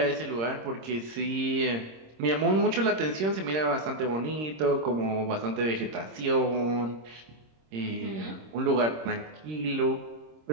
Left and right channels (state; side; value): late; left; 26 ms